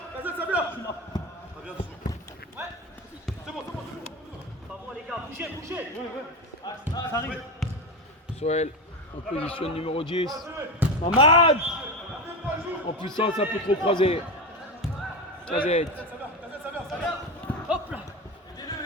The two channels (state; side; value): normal; both; correlation 0.19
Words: Ça arrive. Soel en position numéro 10. Mamad en puissance un peu trop croisé. Kazet.